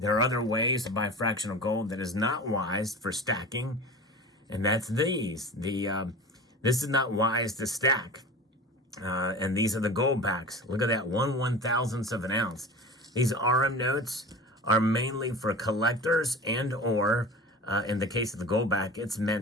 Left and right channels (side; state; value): both; normal; correlation 0.35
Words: are other ways to buy fractional gold that is not wise for stacking, and that's these. This is not wise to stack, and these are the gold backs. Look at that, 1/1000th of an ounce. These RM notes are mainly for collectors or, in the case of the gold back, it's